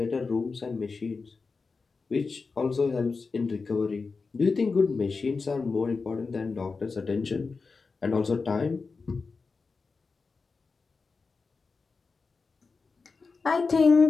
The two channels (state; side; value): quieter; right; 4.5 dB